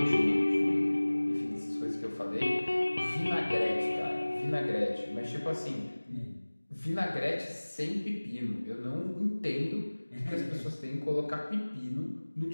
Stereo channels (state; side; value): inverted; both; correlation -1.00